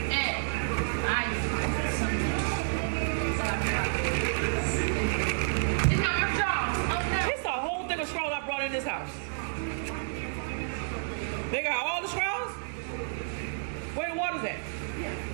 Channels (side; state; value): left; silent; digital silence